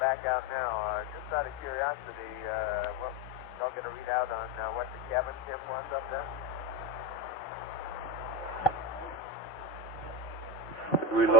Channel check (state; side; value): normal; both; correlation 0.16